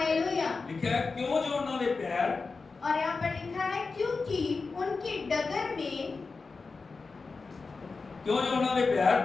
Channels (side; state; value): right; quieter; 4.3 dB